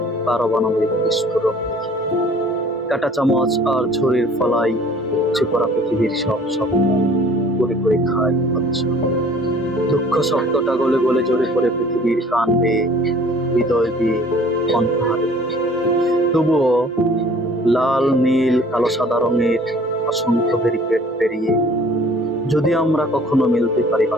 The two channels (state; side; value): normal; both; correlation 0.52